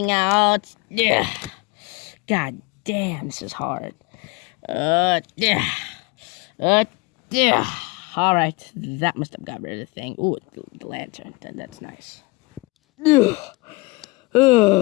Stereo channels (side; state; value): right; quieter; 25.3 dB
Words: out. Yeah. God damn, this is hard. Yeah. Yeah. All right, that must have got rid of the thing. Ooh, the lantern. That's nice.